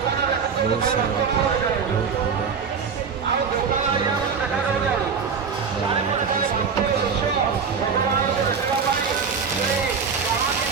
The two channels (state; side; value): quieter; left; 6.1 dB